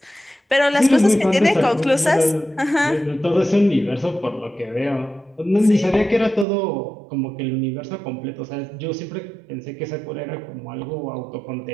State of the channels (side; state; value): left; drops out; at 6.5 s